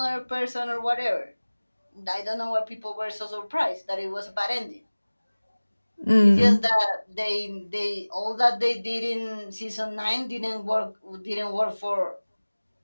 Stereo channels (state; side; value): inverted; both; correlation -1.00